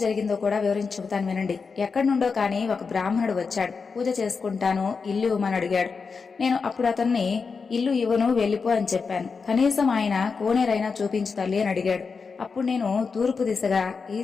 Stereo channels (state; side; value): quieter; right; 5.1 dB